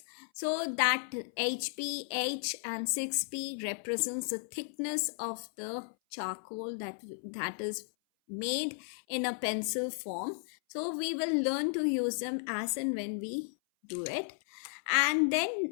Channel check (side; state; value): right; silent; 55 dB below the other